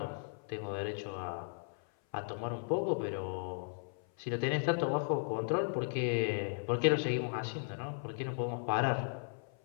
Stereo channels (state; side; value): silent; right; 54 dB below the other